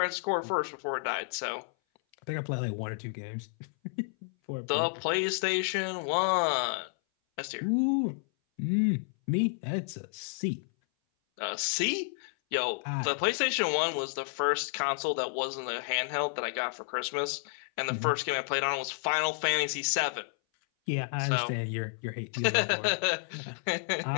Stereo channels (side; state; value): right; silent; 57 dB below the other